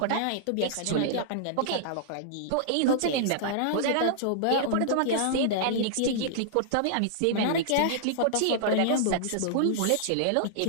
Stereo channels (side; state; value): both; different; correlation -0.01